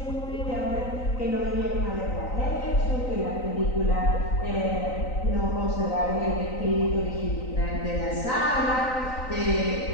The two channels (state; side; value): late; right; 3.9 ms